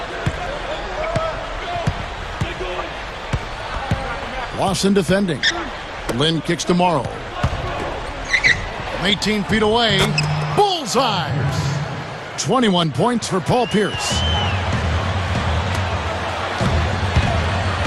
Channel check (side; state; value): both; identical; correlation 1.00